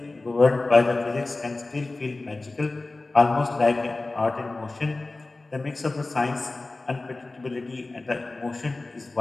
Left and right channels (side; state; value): right; quieter; 3.2 dB